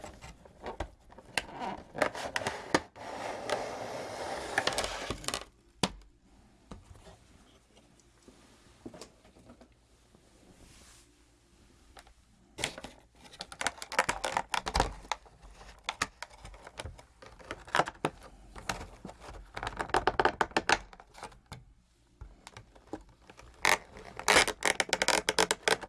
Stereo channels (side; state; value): both; identical; correlation 1.00